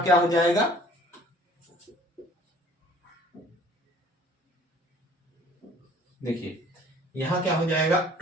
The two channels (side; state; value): both; normal; correlation 0.53